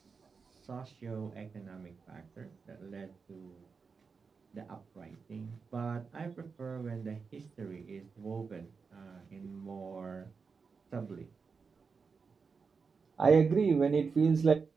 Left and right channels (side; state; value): left; quieter; 5.2 dB